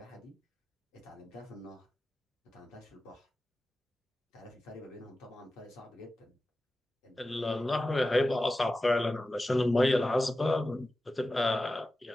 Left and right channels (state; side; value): normal; both; correlation 0.94